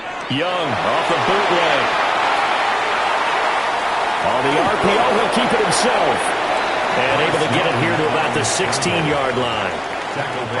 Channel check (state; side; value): identical; both; correlation 1.00